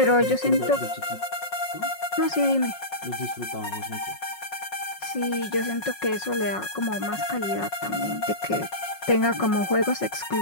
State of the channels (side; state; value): right; late; 5.5 ms